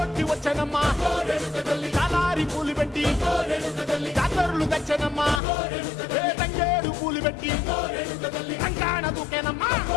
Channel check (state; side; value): drops out; right; at 5.4 s